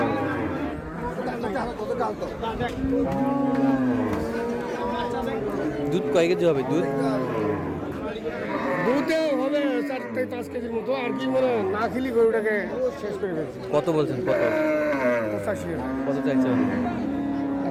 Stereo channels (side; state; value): both; identical; correlation 1.00